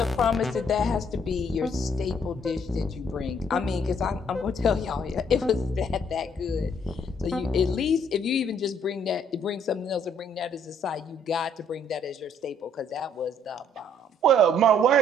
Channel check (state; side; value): normal; both; correlation 0.65